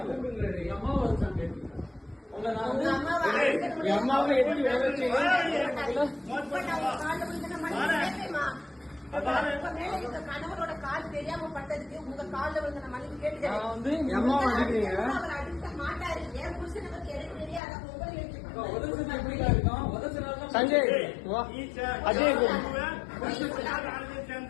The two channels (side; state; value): right; drops out; at 17.6 s